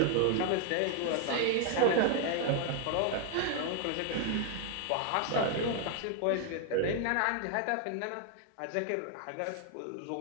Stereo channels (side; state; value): both; different; correlation 0.00